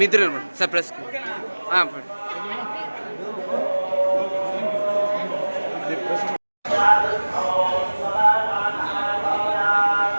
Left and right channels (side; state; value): both; inverted; correlation -1.00